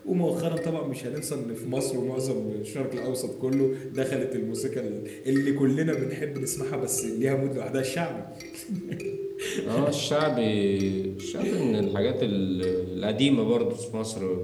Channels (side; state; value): both; identical; correlation 1.00